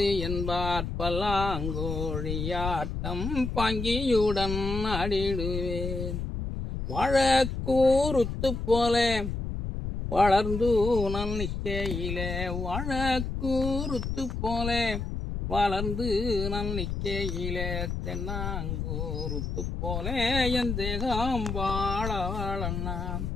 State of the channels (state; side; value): noise; left; rumble, 4 dB below the sound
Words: என்பார். பல்லாங்கோழியாட்டம் பாங்கியுடன் ஆடிடுவேன், வாழக்கூறுத்து போல வளர்ந்து நான் நிற்கையிலே, வாழக்கூறுத்து போல வளர்ந்து நான் நிற்கையிலே, தென்னாங்கூறுத்து போல என் தேகம் வாழ வாழண்ணா.